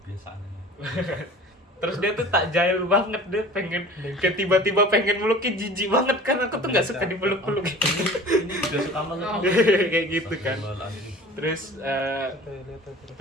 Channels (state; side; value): normal; both; correlation 0.43